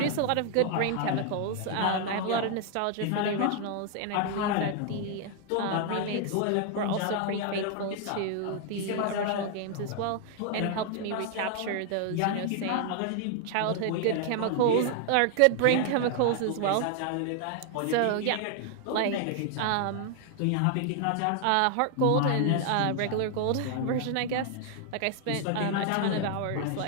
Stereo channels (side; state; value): both; different; correlation 0.00